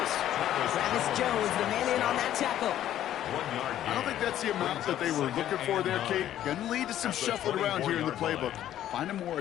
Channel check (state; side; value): quieter; right; 11.9 dB